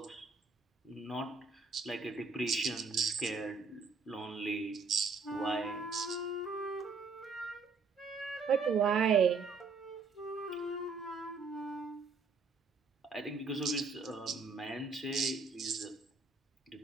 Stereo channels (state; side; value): quieter; left; 4.6 dB